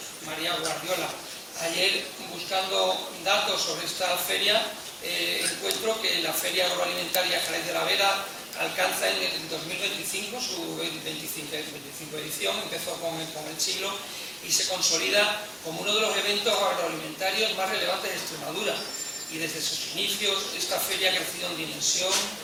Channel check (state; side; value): identical; both; correlation 1.00